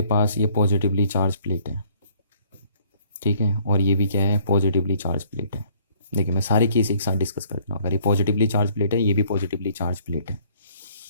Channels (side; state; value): both; inverted; correlation -0.60